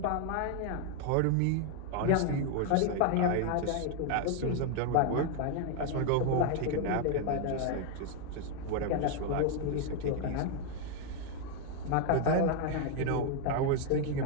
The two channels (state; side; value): different; both; correlation 0.00